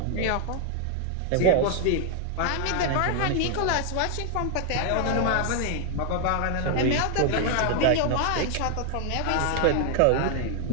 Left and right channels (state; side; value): different; both; correlation 0.00